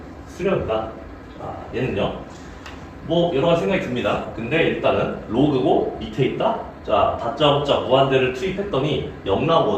수렴이다. 자, 얘는요. 뭐 여러 가지 생각이 듭니다. 근데 일단은 로그고 밑에 있다. 자, 다짜고짜 무한대를 투입했더니 0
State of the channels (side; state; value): both; identical; correlation 1.00